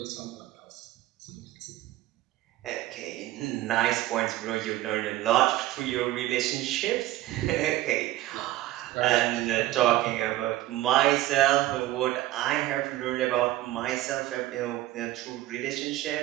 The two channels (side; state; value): left; quieter; 15.6 dB